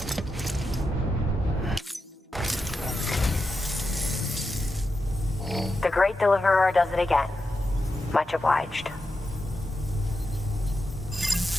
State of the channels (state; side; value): normal; both; correlation 0.88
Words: The Great Deliverer does it again. Much obliged.